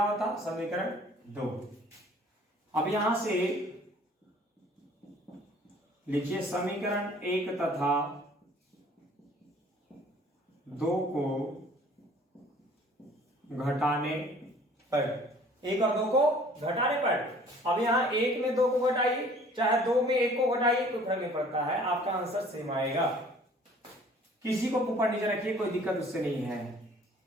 था, समीकरण 2। अब यहां से लिखिए समीकरण 1 तथा 2 को घटाने पर, 1 और 2 को घटाने पर। अब यहां 1 में 2 को घटाइए, चाहे 2 में 1 को घटाइए, कोई फर्क नहीं पड़ता है, आपका आंसर सेम आएगा। किसी को ऊपर नीचे रखिए, कोई दिक्कत उससे नहीं है।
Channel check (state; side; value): normal; both; correlation 0.53